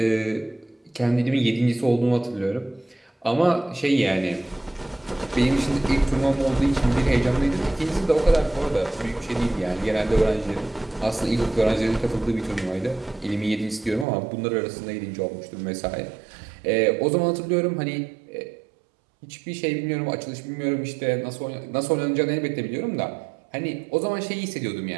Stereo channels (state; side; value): drops out; left; at 14.1 s